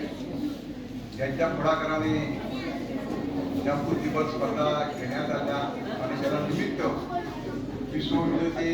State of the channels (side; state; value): both; identical; correlation 1.00